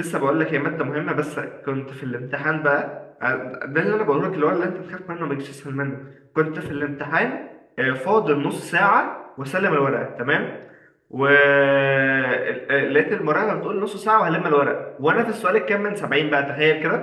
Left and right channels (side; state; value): both; identical; correlation 1.00